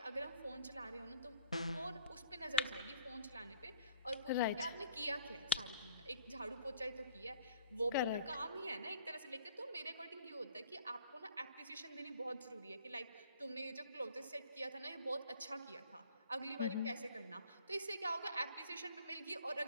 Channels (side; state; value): both; inverted; correlation -0.53